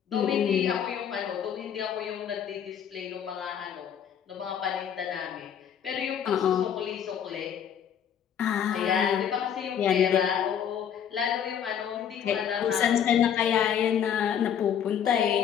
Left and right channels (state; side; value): quieter; right; 8.7 dB